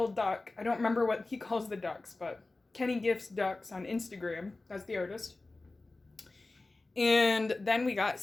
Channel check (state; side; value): quieter; right; 3.2 dB